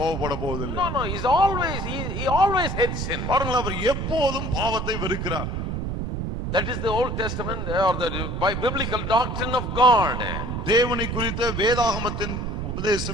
கோபப்பட போவதில்லை. No, he's always he always hates sin. பாருங்கள், அவர் எப்போதும் பாவத்தை வெறுக்கிறார். That is the Old Testament or the biblical doctrine of God. தேவனை குறித்த வேதாகமத்தின்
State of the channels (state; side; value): noise; right; rumble, 3 dB below the sound